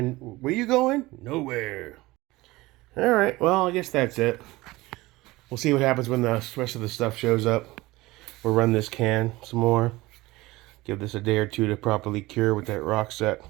Where you going? Nowhere. Alright, well, I guess that's it. We'll see what happens when the rest of the stuff shows up. We'll run this can some more. Give this a day or two to properly cure with that rock set.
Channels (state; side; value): quieter; left; 19.9 dB